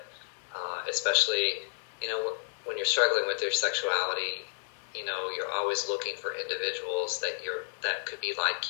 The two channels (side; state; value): right; silent; 57 dB below the other